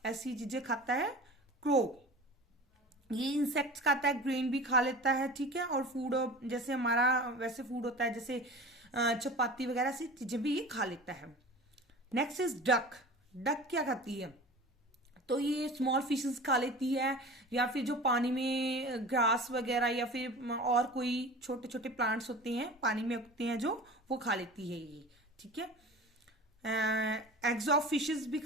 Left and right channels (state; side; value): normal; both; correlation 0.37